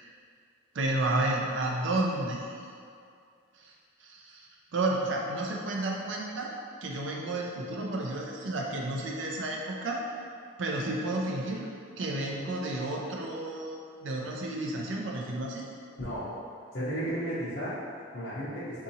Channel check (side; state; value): both; normal; correlation 0.37